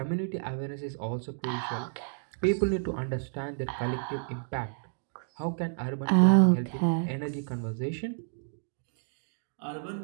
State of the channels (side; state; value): left; silent; digital silence